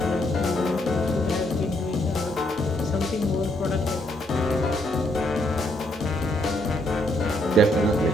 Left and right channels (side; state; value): both; normal; correlation 0.73